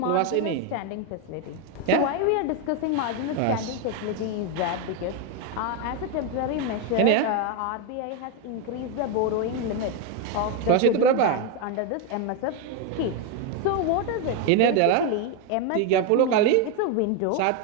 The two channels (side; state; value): both; different; correlation 0.01